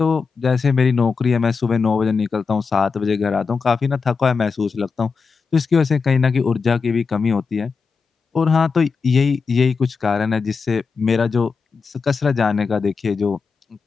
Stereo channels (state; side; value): quieter; right; 5.1 dB